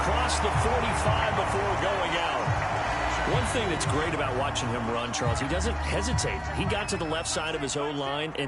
the 45 before going out. One thing that's great about watching him run, Charles, he doesn't hesitate. He got to the left side of his own line and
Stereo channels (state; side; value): identical; both; correlation 1.00